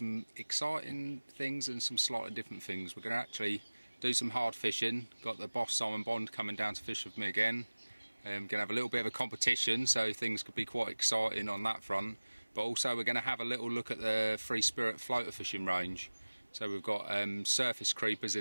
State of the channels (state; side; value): inverted; both; correlation -1.00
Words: exciting things and some slightly different things. We're going to actually do some hard fishing. Got the boss Simon Bond coming down to fish with me again. Going to have a little bit of a competition, so things could be quite exciting on that front. But also we're going to have a little look at the free spirit floater fishing range. So we've got surface creepers